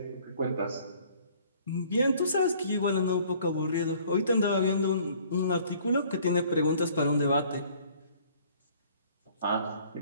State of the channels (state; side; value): inverted; both; correlation -0.56